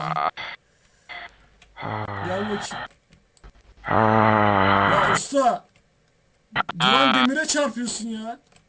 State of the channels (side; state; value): both; identical; correlation 1.00